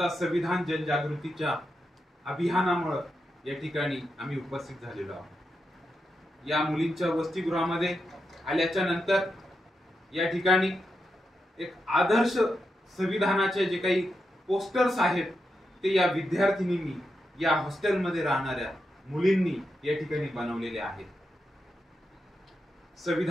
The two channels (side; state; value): both; normal; correlation 0.86